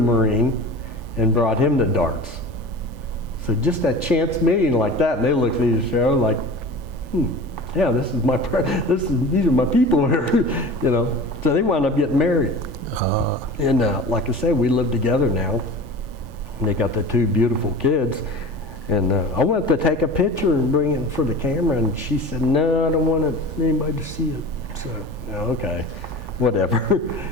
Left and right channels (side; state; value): left; late; 3.4 ms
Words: and brought him the darts. So just that chance meeting like that, and they looked at each other like, yeah, these are my people here, you know. So they wound up getting married. And like I say, we live together now. And they got their two beautiful kids. And I wanted to take a picture and bring it for the camera, and she said, no, I don't want anybody to see it. So, okay, whatever.